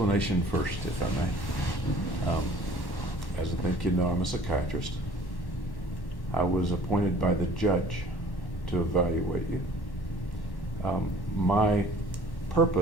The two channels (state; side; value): late; right; 1.1 ms